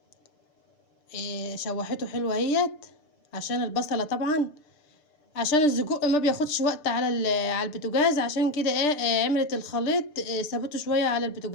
شوحته حلوه اهيت، عشان البصله طبعا، عشان السجق ما بياخدش وقت على على البوتاجاز، عشان كده عملت الخليط سابته شويه على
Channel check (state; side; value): late; right; 6.7 ms